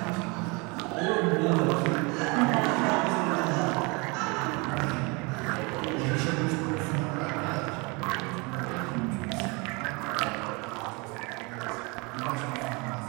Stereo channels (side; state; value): left; quieter; 28.6 dB